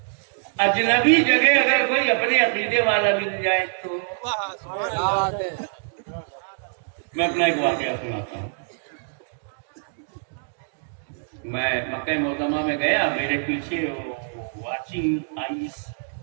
अजनबी जगह अगर कोई अपने अकीदे वाला मिल जाए तो। मैं अपना एक वाकया सुनाता हूँ। मैं मक्का मुकर्रमा में गया, मेरे पीछे वाचिंग आईज,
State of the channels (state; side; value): silent; left; digital silence